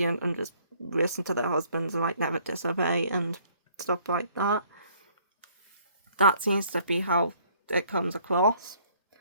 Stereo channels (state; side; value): inverted; both; correlation -0.61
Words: and just listen to their husbands and like never disobey and stuff like that. That seems to be how it comes across.